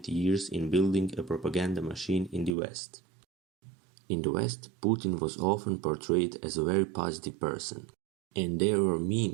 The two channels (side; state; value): left; drops out; at 2.6 s